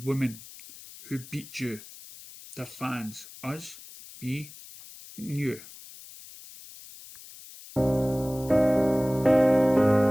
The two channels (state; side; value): noise; left; hiss, 18 dB below the sound